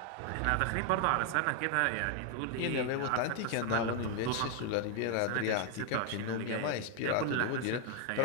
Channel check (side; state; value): both; different; correlation 0.00